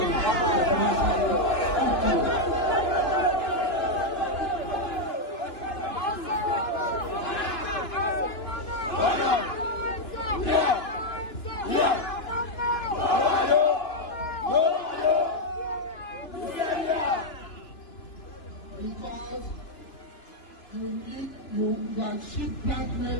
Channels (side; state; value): right; late; 2.9 ms